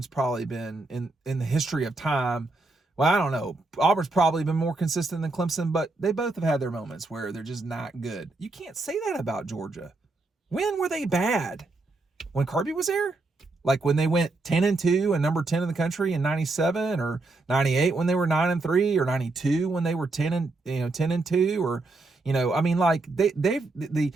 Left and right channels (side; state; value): left; quieter; 3.3 dB